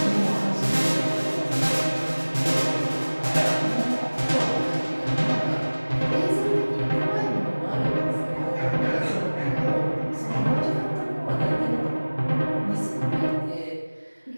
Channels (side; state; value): both; inverted; correlation -1.00